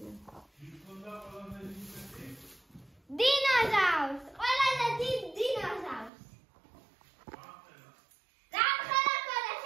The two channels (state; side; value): drops out; left; at 6.1 s